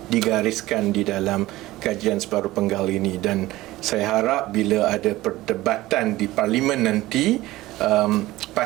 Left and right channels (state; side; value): quieter; left; 17.5 dB